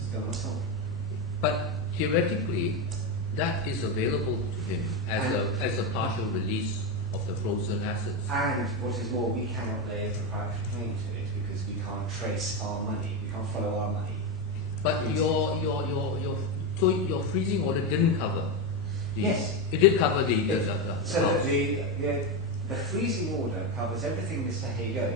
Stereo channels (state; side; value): normal; both; correlation 0.11